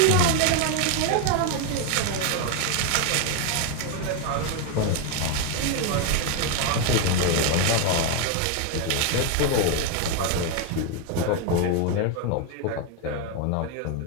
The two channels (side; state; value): both; different; correlation 0.01